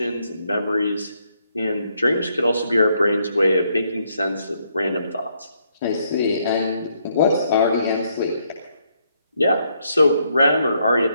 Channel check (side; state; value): both; inverted; correlation -0.74